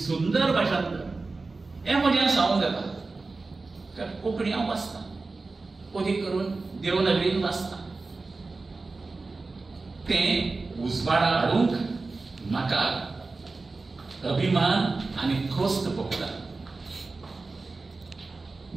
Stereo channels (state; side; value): quieter; left; 3.7 dB